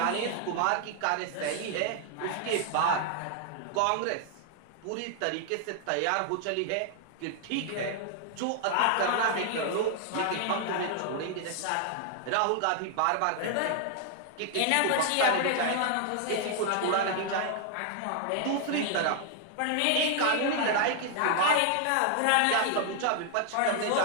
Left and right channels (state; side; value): different; both; correlation 0.00